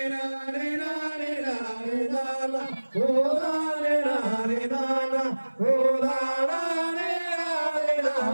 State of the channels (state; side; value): inverted; both; correlation -1.00